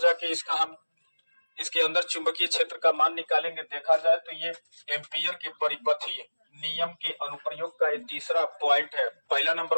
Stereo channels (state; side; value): inverted; both; correlation -1.00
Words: जाके इसका हम इसके अंदर चुंबकीय क्षेत्र का मान निकालेंगे। देखा जाए तो ये एम्पियर के परिपथीय नियम के अनुप्रयोग का ये तीसरा पॉइंट है। पहला